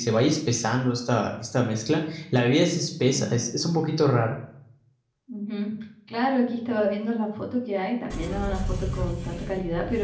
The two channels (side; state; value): both; identical; correlation 1.00